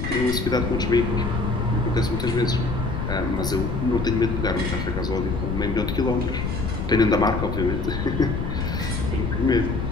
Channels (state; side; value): noise; left; rumble, 3 dB below the sound